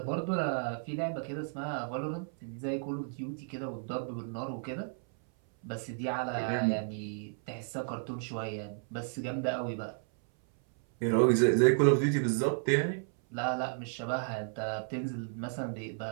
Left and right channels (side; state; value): left; silent; 56 dB below the other